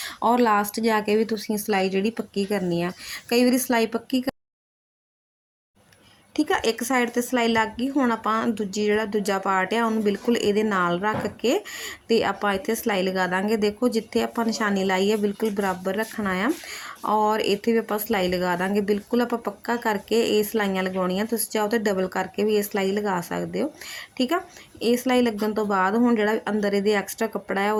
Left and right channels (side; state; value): both; identical; correlation 1.00